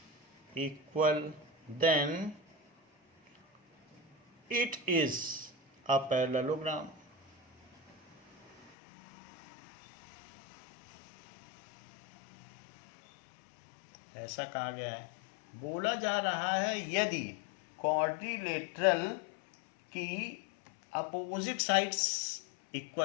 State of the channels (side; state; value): right; drops out; at 8.7 s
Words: equal then it is a parallelogram. ऐसा कहा गया है। बोला जा रहा है यदि क्वाड्रिलेटरल की अपोजिट साइड्स